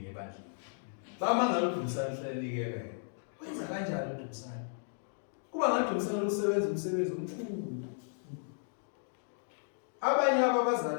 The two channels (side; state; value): right; silent; digital silence